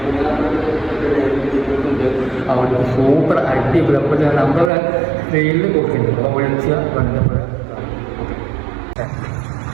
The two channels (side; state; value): left; drops out; at 4.7 s